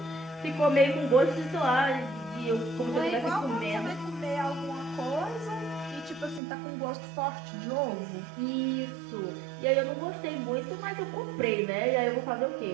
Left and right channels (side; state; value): left; drops out; at 6.4 s